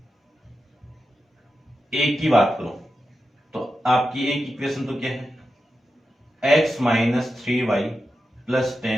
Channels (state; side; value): normal; both; correlation 0.90